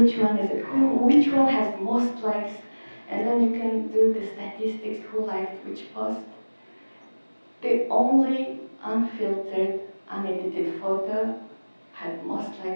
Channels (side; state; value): both; inverted; correlation -1.00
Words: one is it? Which one has most likes? And then you can do the statistics, who liked which post. The only unfiltered, unedited photo had most